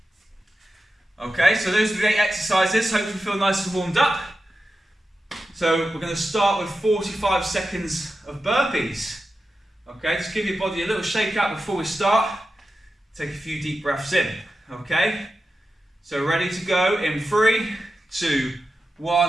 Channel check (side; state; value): both; normal; correlation 0.91